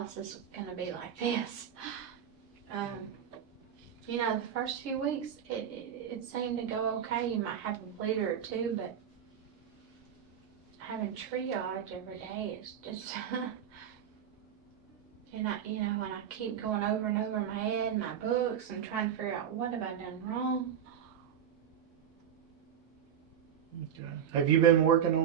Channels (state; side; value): quieter; left; 8.9 dB